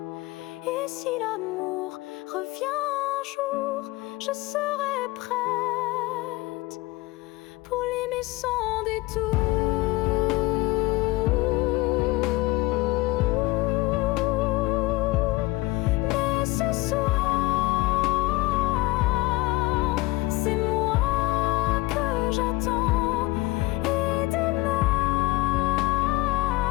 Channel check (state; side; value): quieter; right; 20.7 dB